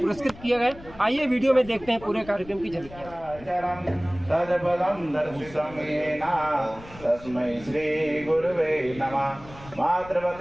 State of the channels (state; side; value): noise; left; rumble, 19 dB below the sound